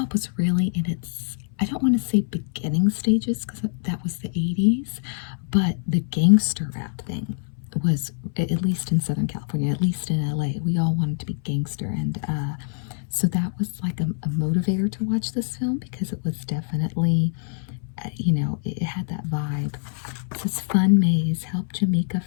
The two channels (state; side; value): silent; right; 62 dB below the other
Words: really in its, I don't want to say beginning stages, because that was the 80s, but the gangster rap thing was, at least in Southern California, at least in LA, we all wanted to be gangster. And so that was like a motivator to watch this film, because it was definitely, it had that vibe. It says Fun Maze, help Jamaica